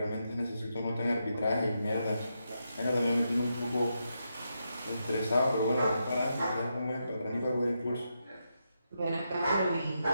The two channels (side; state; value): both; inverted; correlation -0.84